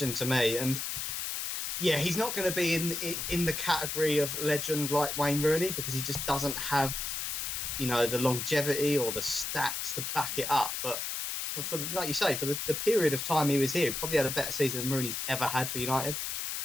to me. And yeah, he's not going to be in the category of legend like Wayne Rooney because he just doesn't have, the longevity or the stats to back it up. But for like you say, for the period of time he was here, he probably had a better season than Rooney's ever had for United.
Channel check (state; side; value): noise; left; hiss, 3 dB below the sound